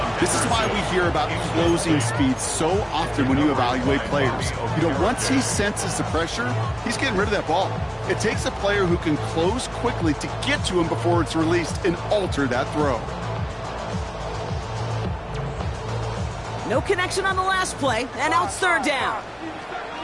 This is why we hear about closing speed so often when you evaluate players. You know, once he senses the pressure, he's getting rid of that ball. It takes a player who can close quickly to get to him before it's released and alter that throw. No connection on the last play, and now it's 3rd down.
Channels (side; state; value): both; identical; correlation 1.00